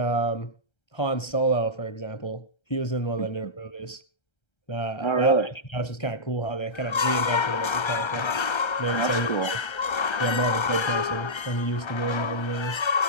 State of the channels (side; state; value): right; late; 1.3 ms